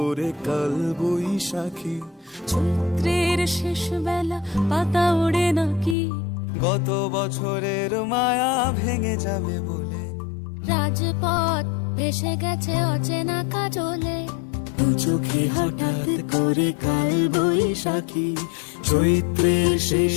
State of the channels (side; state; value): right; drops out; at 6.0 s